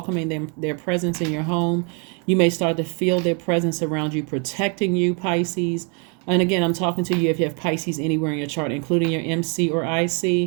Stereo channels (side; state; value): left; quieter; 36.2 dB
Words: their presence in your home. You may start to feel their presence around you, protecting you, Pisces. And again, I'm talking to you if you have Pisces anywhere in your chart, including your MC or